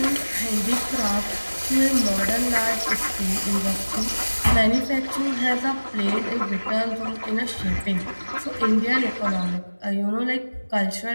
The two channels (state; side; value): inverted; both; correlation -1.00